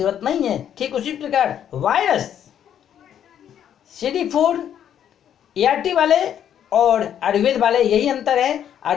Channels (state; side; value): quieter; right; 9.7 dB